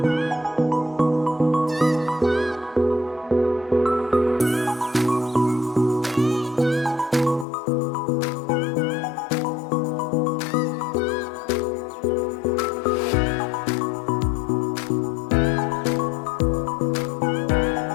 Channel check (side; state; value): right; drops out; at 7.5 s